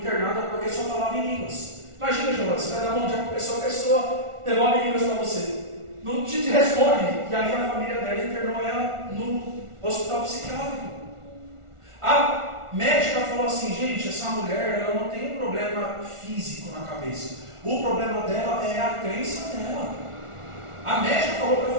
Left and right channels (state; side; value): late; left; 1.4 ms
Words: porque só falava em línguas. Imagina, João, você vai dar um dia para a pessoa devolve línguas para você. Não te responde. E aí a família dela internou ela no hospital psiquiátrico. A médica falou assim, gente, essa mulher ela não tem um problema físico na cabeça. O problema dela é a crença dela. A médica falou para